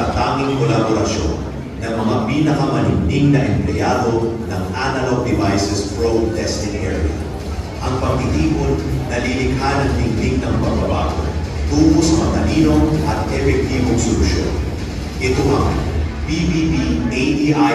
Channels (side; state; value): both; identical; correlation 1.00